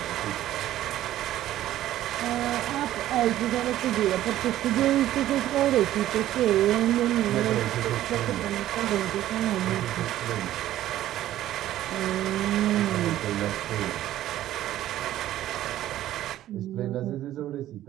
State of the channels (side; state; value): left; quieter; 13.4 dB